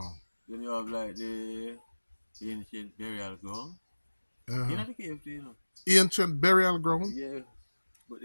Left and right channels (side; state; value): both; inverted; correlation -1.00